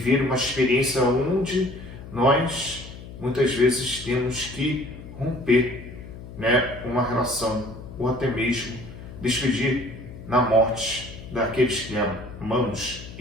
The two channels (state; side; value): noise; left; hum, 14 dB below the sound